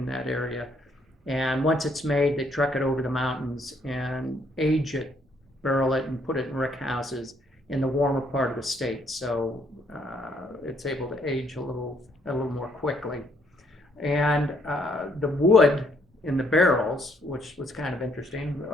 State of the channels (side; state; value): both; normal; correlation 0.69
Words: that area. And once it's made, they truck it over the mountains and age it, barrel it, and put it in rick houses in the warmer part of the state, so it's able to age a little more quickly. And the wood in the barrels, which was kind of interesting.